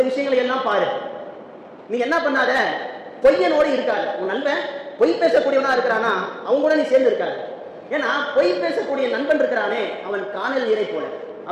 விஷயங்களை எல்லாம் பாரு. நீ என்ன பண்ணாத, பொய்யனோடு இருக்காது. உன் நண்பன் பொய் பேசக்கூடியவனா இருக்கிறானா அவங்க கூட நீ சேர்ந்து இருக்காது. ஏன்னா பொய் பேசக்கூடிய நண்பன் இருக்கிறானே அவன் காணல் நீரை போல,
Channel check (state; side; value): identical; both; correlation 1.00